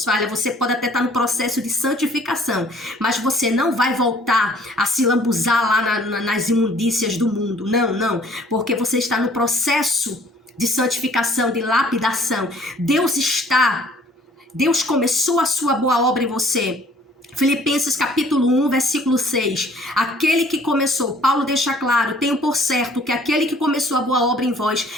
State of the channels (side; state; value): both; normal; correlation 0.56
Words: falhas, você pode até estar no processo de santificação, mas você não vai voltar a se lambuzar lá nas imundícias do mundo, não, porque você está no processo de santificação, de lapidação. Deus começou a sua boa obra em você. Filipenses capítulo 1, versículo 6. Aquele que começou, Paulo deixa claro, tenho por certo que aquele que começou a boa obra em vós,